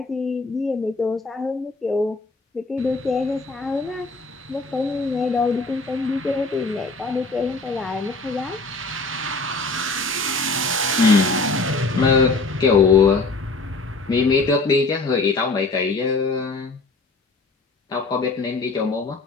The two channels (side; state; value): right; quieter; 3.5 dB